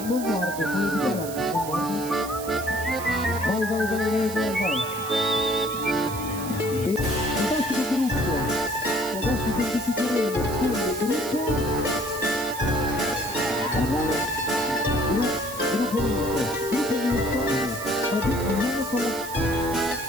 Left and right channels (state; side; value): noise; right; hiss, 11 dB below the sound